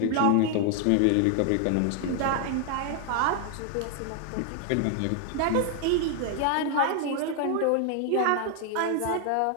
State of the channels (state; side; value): different; both; correlation 0.00